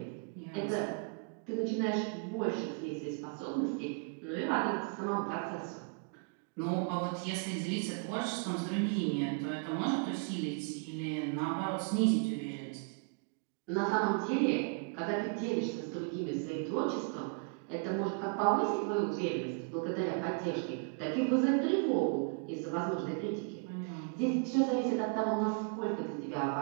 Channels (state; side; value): quieter; left; 38.2 dB